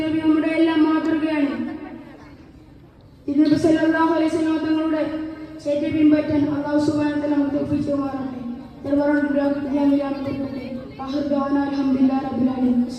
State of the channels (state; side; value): identical; both; correlation 1.00